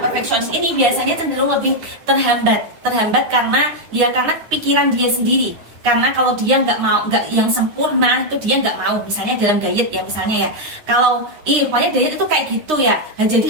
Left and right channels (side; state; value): left; late; 9.6 ms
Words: perfeksionis ini biasanya cenderung lebih terhambat karena pikiran dia sendiri. Karena kalau dia nggak yang sempurna, itu dia nggak mau. Misalnya dalam diet ya, misalnya ya, kalau rupanya diet itu kayak gitu ya, nah, jadi